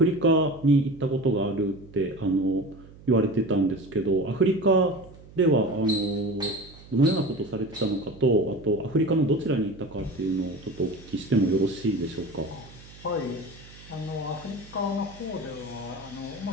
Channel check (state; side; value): noise; right; hum, 20 dB below the sound